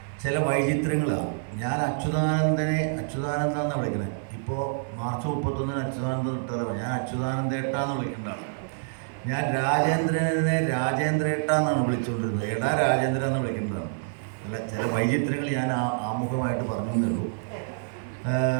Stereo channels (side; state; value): left; silent; 60 dB below the other